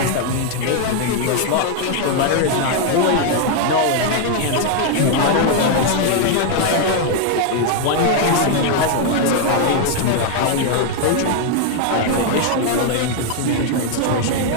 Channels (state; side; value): different; both; correlation 0.00